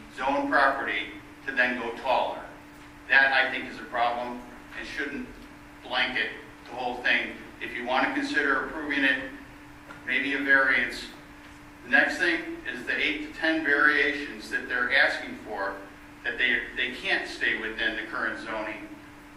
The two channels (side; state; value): both; identical; correlation 1.00